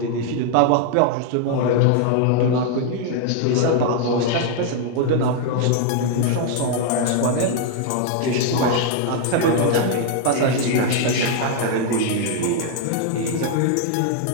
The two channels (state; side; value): different; both; correlation 0.00